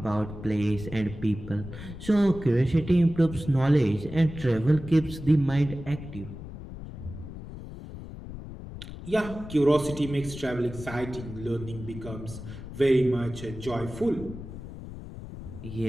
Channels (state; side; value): noise; left; rumble, 12 dB below the sound